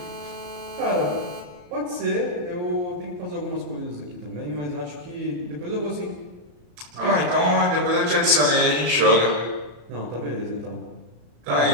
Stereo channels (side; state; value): left; late; 34 ms